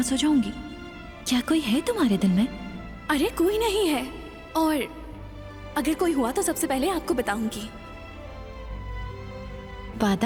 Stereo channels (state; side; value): identical; both; correlation 1.00